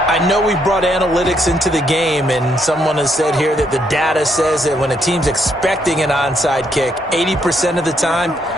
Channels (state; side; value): normal; both; correlation 0.74